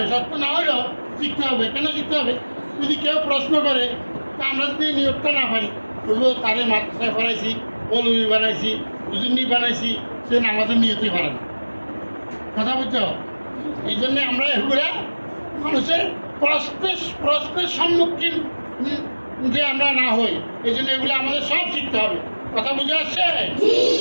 শর্ত না হলেও শিখতে হবে কেন শিখতে হবে যদি কেউ প্রশ্ন করে তা আমরা যদি নিয়তটা না পারি তবুও তারে মাদ্রাসায় পড়াইছি মৌলবি বানাইছি হুজুরনি বানাইছি সে আমাদের নিয়তই পারে না কথা বুঝছো এই জন্য আমরা এগুলা মানুষের প্রশ্নের সম্মুখীন যে আমরা না হই এই জন্য এগুলো আমাদের সব শিখতে হবে কথা বুঝে আসছে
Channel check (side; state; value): both; inverted; correlation -1.00